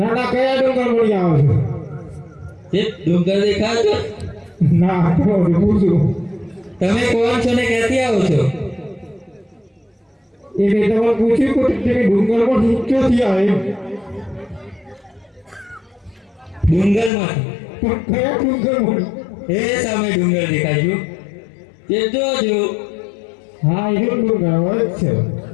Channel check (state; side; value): drops out; right; at 17.1 s